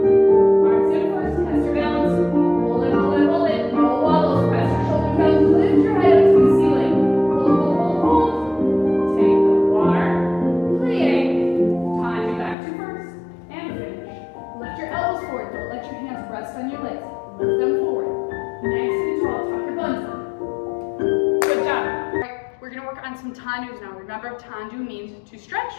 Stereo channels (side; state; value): right; drops out; at 12.6 s